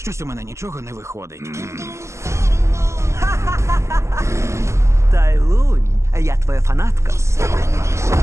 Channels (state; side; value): late; left; 0.13 ms